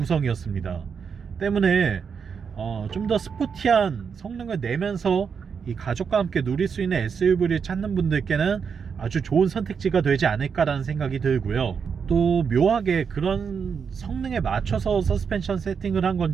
때문에 좀 더 스포티한 성능을 내면서 이 가족과 함께 누릴 수 있는 SUV를 찾는 분들께는 아주 좋은 선택지가 되지 않을까라는 생각이 들고요. 또 묘하게 그런 성능에 맞춰서 서스펜션 세팅을 한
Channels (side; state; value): left; quieter; 6.3 dB